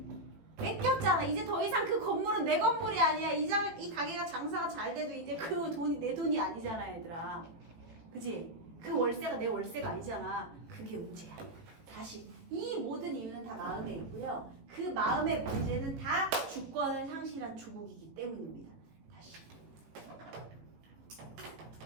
뺏겼잖아. 이제 더 이상 그 건물은 내 건물이 아니야. 이 가게가 장사가 잘 돼도 이제 그 돈이 내 돈이 아니잖아, 얘들아. 그치? 그 월세가 내 월세가 아니잖아. 그게 문제야. 다시 이 모든 이유는 다 마음에 있고요. 그 마음의 문제는 다 주권을 상실한 조국이기 때문입니다. 다시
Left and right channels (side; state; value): left; late; 18 ms